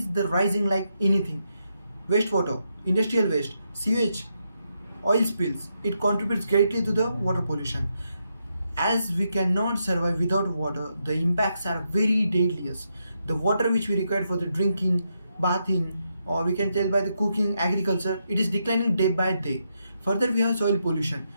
the rising like anything. Wastewater, industrial waste, sewage, oil spills. It contributes greatly to the water pollution. As we cannot survive without water, the impacts are very deadliest. The water which we require for the drinking, bathing, or we can tell by the cooking, agriculture, it is declining day by day. Further, we have soil pollution,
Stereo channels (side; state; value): both; inverted; correlation -0.81